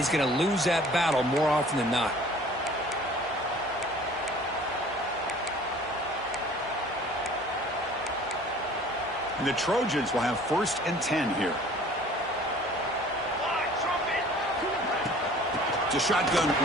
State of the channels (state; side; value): normal; both; correlation 0.49